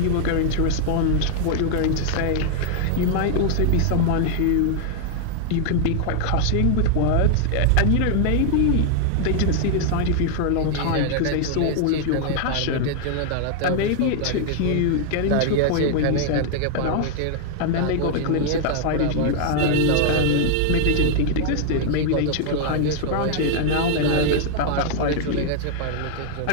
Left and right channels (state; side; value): different; both; correlation 0.00